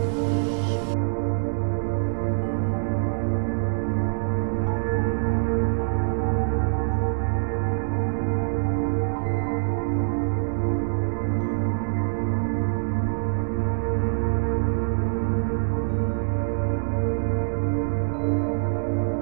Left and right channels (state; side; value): silent; left; 62 dB below the other